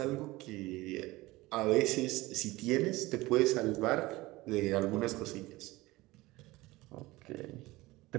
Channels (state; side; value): quieter; left; 19.8 dB